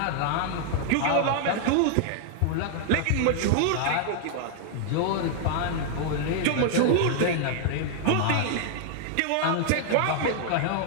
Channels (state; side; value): different; both; correlation 0.00